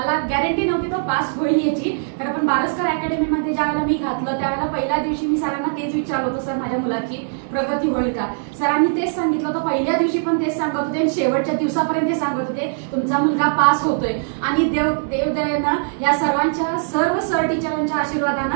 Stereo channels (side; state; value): left; silent; digital silence